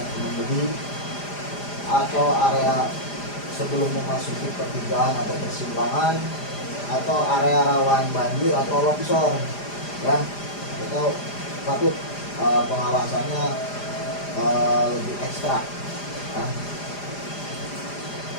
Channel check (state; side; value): late; right; 4.9 ms